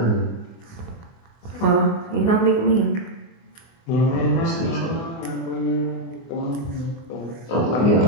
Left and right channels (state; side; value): late; right; 24 ms